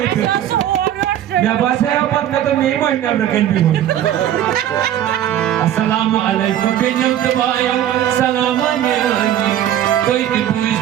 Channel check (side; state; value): left; quieter; 11.3 dB